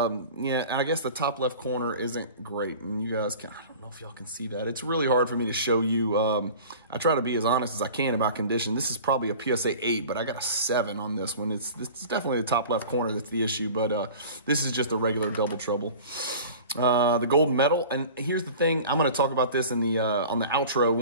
and I guess the top left corner isn't great. And you guys can, I don't know if y'all can see that. It's really hard for me to show you. I try to be as honest as I can about condition. This is probably a PSA 8, but I got a 7 on this one. It's definitely the top left corner that's the issue, but this is just a regular double trouble. The gold medal, and here's the thing, I'm going to talk about this in the on the outro.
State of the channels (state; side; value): inverted; both; correlation -0.40